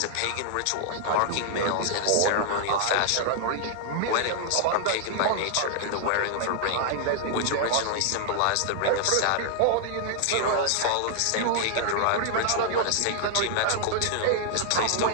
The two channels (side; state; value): both; different; correlation -0.01